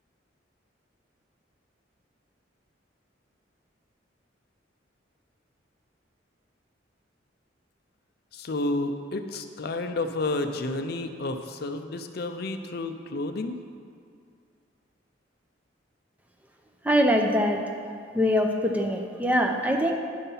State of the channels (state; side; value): normal; both; correlation 0.56